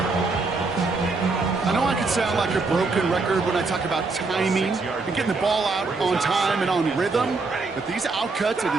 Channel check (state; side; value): quieter; left; 3.9 dB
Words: I know I can sound like a broken record when I talk about timing and getting the ball out on time and on rhythm, but these outcuts, it